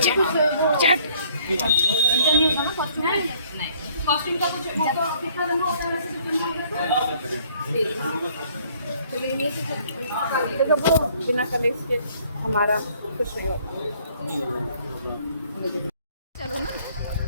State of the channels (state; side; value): inverted; both; correlation -0.61